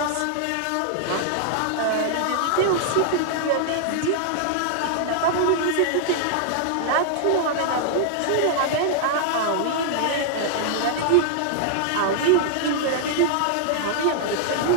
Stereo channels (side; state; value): both; different; correlation -0.01